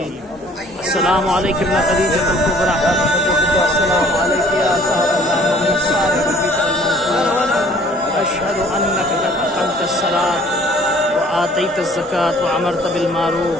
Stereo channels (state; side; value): normal; both; correlation 0.55